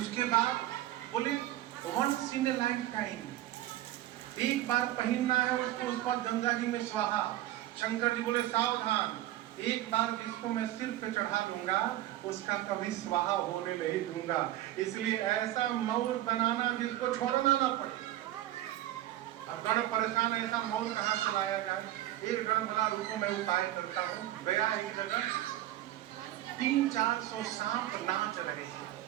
बाद बोले once in a lifetime, एक बार पहनना है उसको, उस पर गंगा जी में स्वाहा। शंकर जी बोले सावधान, एक बार जिसको मैं सिर पे चढ़ा दूंगा उसका कभी स्वाहा होने नहीं दूंगा। इसलिए ऐसा मौर बनाना जिसको छोड़ना ना पड़े। अब गण परेशान, ऐसा मौर कहाँ से लाया जाए। एक गण बोला रुको मैं उपाय करता हूँ। गया एक जगह 300-400 सांप नाच रहे हैं।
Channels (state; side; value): quieter; left; 14.2 dB